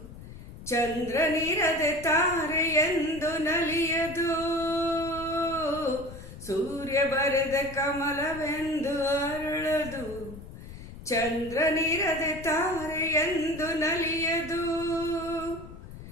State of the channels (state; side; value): noise; left; rumble, 14 dB below the sound